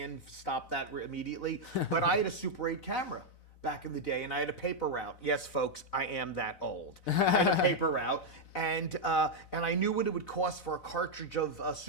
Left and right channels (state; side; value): late; right; 4.0 ms